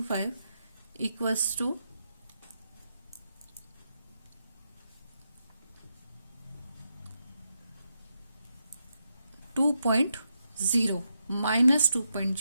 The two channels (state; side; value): inverted; both; correlation -0.83